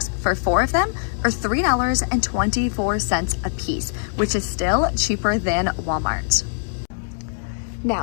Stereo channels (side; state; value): right; silent; digital silence